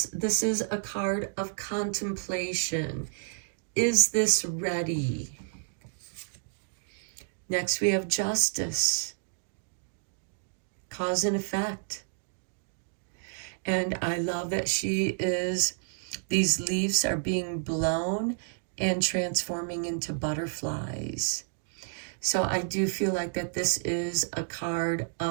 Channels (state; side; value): silent; left; digital silence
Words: is a card of contemplation. Is this ready? Next we have Justice, cause and effect. And I love that these leaves are being blown and transforming into butterflies. So I do feel like that this is a card